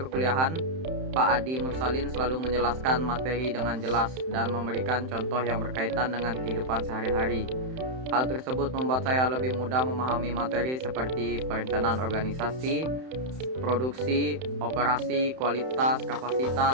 Pak Adi Mursalin selalu menjelaskan materi dengan jelas dan memberikan contoh yang berkaitan dengan kehidupan sehari-hari. Hal tersebut membuat saya lebih mudah memahami materi seperti perencanaan organisasi, produksi, operasi, kualitas,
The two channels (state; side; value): late; left; 31 ms